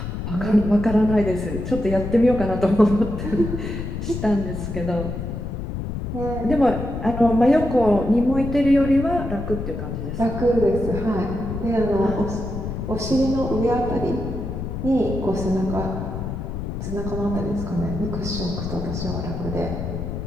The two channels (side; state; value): left; noise; rumble, 5 dB below the sound